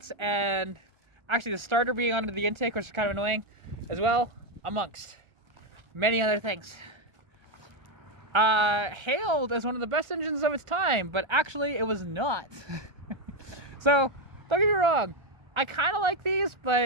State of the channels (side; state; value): left; late; 1.3 ms